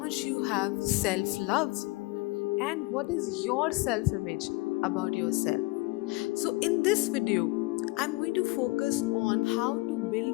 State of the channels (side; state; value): right; quieter; 23.7 dB